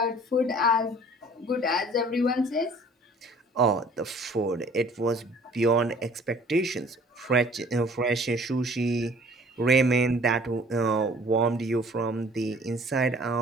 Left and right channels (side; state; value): both; normal; correlation 0.52